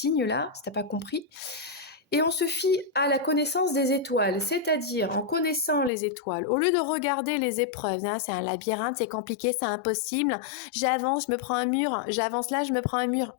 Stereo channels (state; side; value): drops out; right; at 5.9 s